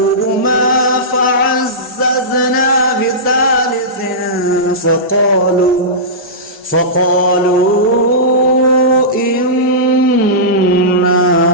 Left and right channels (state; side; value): normal; both; correlation -0.17